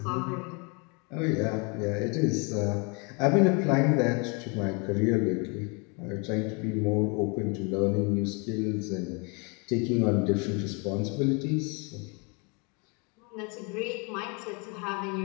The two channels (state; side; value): quieter; right; 32.2 dB